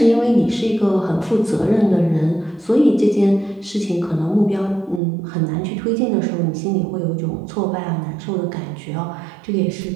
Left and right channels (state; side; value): drops out; left; at 5.0 s